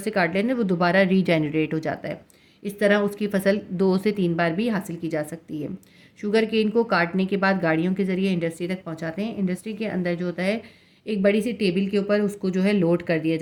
काट लेते हैं वो दोबारा रीजेनरेट हो जाता है। इस तरह उसकी फसल 2 से 3 बार भी हासिल की जा सकती है। शुगर केन को काटने के बाद गाड़ियों के ज़रिए इंडस्ट्री तक पहुँचाते हैं। इंडस्ट्री के अंदर जो होता है एक बड़ी सी टेबल के ऊपर उसको जो है लोड कर दिया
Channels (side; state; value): both; identical; correlation 1.00